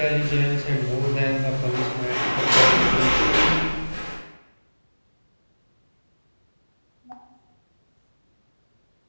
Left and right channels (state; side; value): inverted; both; correlation -1.00